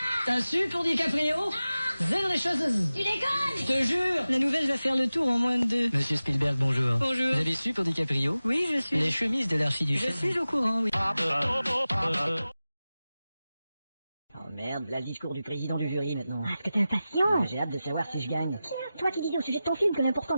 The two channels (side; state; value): both; inverted; correlation -0.95